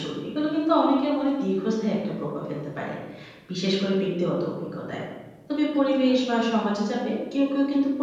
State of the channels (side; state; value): both; identical; correlation 1.00